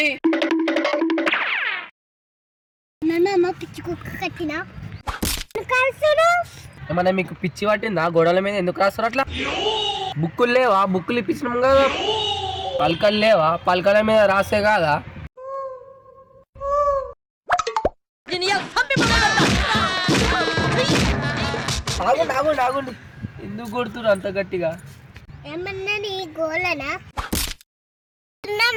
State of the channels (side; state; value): both; identical; correlation 1.00